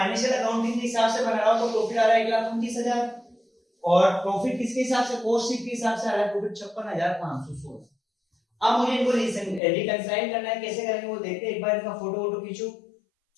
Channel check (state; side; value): drops out; right; at 9.6 s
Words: अकाउंटिंग के हिसाब से बना रहा हूं तो प्रॉफिट आ रहा है 1,29,000, और प्रॉफिट किसके हिसाब से, कॉस्ट शीट के हिसाब से आ रहा है प्रॉफिट 56,516। अब मुझे इनको रिकंसाइल करना है, कैसे करेंगे वो देखते हैं, एक बार इनका फोटो वोटो खींचो,